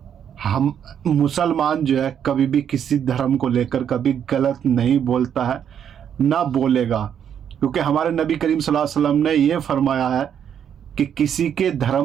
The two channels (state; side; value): quieter; left; 8.7 dB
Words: हम मुसलमान जो है कभी भी किसी धर्म को लेकर कभी गलत नहीं बोलता है, ना बोलेगा, क्योंकि हमारे नबी करीम सल्लल्लाहु अलैहि वसल्लम ने ये फरमाया है कि किसी के